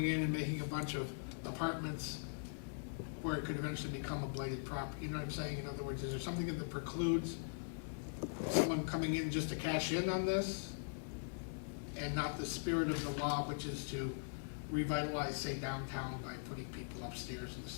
in and making a bunch of apartments where it could eventually become a blighted property, you know what I'm saying? In other words, is there something that precludes someone coming in just to cash in on this? And not the spirit of the law, which is to revitalize, say, downtown by putting people upstairs in the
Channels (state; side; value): silent; right; digital silence